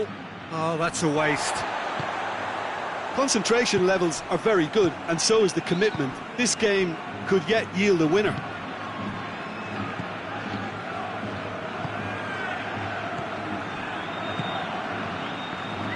Oh, that's a waste. Concentration levels are very good, and so is the commitment. This game could yet yield a winner.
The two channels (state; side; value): identical; both; correlation 1.00